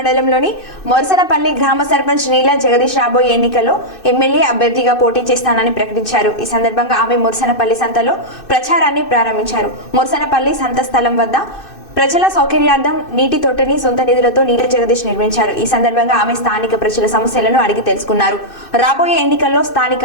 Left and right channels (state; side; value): late; right; 2.6 ms